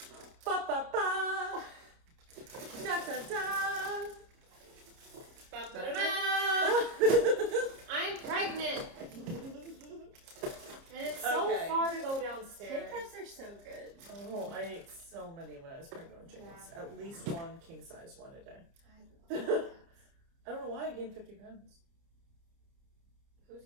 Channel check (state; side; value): late; left; 30 ms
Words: Ba ba ba. Da da da. I'm pregnant, and it's so Okay. far to go Kit downstairs. Kats are so good. Oh, I ate so many when I was pregnant with James. Yeah. At least one king size one a day. I love that. I don't know why I gained 50 pounds. Who's